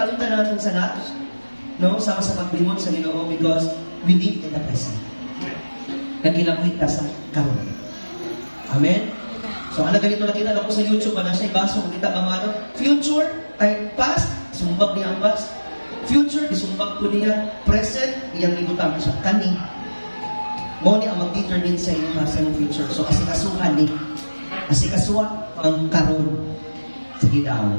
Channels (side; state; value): both; inverted; correlation -1.00